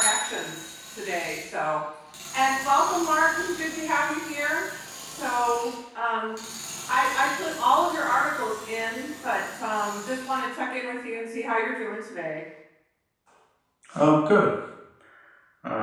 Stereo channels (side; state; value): both; identical; correlation 1.00